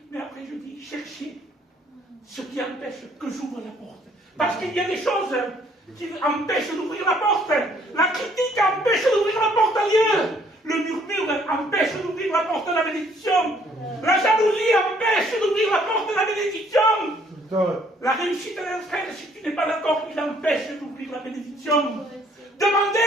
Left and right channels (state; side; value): normal; both; correlation 0.63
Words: Mais après, je dis, cherchez ce qui empêche que j'ouvre la porte. Parce qu'il y a des choses qui empêchent d'ouvrir la porte. La critique empêche d'ouvrir la porte à Dieu. Le murmure empêche d'ouvrir la porte de la bénédiction. La jalousie empêche d'ouvrir la porte de la bénédiction. La réussite d'un frère, si tu n'es pas d'accord, il empêche d'ouvrir la bénédiction.